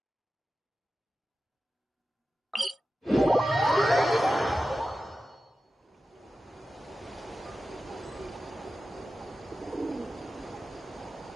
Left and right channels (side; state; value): both; normal; correlation 0.93